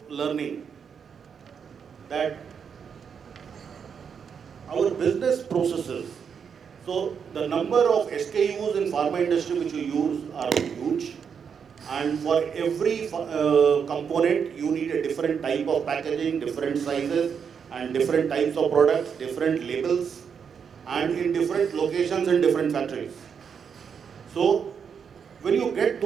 learning, that our business processes, so the number of SKUs in pharma industry which you use are huge. And for every component, you need a different type of packaging, different sizes, and different types of products, different labels, and in different locations and different factories. So, when you get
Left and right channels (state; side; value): quieter; left; 6.8 dB